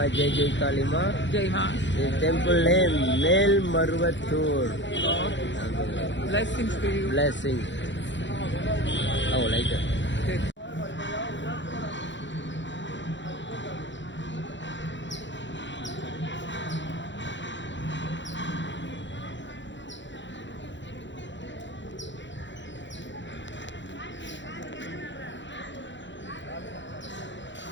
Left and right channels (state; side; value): late; right; 0.54 ms